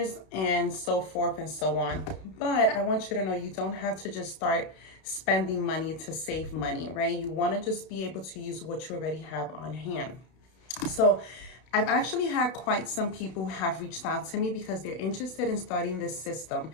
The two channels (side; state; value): right; late; 32 ms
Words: and so forth and so on. But I want you to know you don't have to just start spending money to save money, right? You want to just be able to use what you already have on hand. So I've actually had quite some people who have reached out to me because they're interested in starting this system,